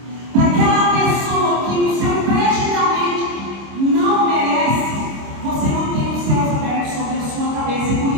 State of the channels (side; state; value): left; late; 26 ms